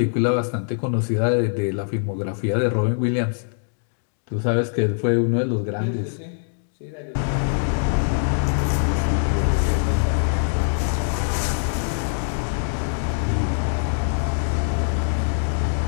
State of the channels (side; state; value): right; silent; digital silence